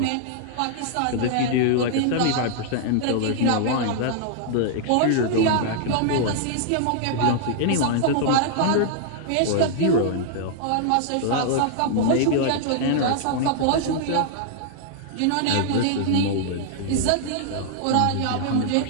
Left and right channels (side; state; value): both; different; correlation -0.01